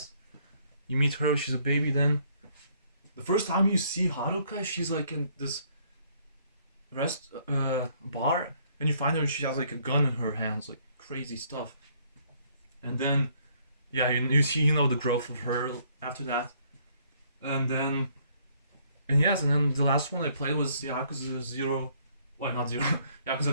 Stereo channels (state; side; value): inverted; both; correlation -0.65